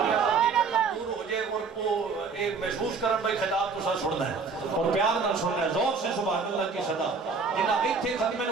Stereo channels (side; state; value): left; quieter; 4.8 dB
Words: ہو جائے اور وہ ایک محسوس کرن بھائی خطاب تو سا سننا ہے اور پیار نہ سننا ہے زور سے سبحان اللہ کی صدا جنہ ایتھے ختم